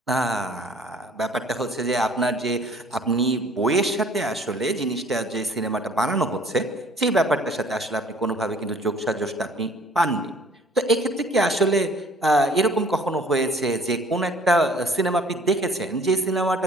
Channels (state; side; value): normal; both; correlation 0.54